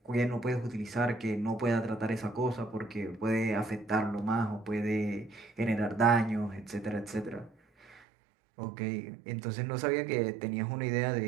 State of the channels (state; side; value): drops out; left; at 8.0 s